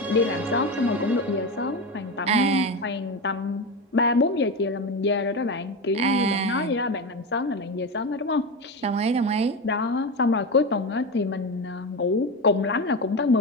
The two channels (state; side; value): normal; both; correlation 0.19